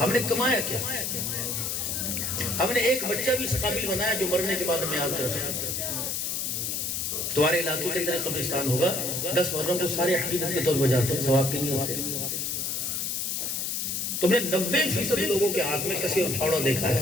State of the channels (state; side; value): noise; left; hiss, 1 dB below the sound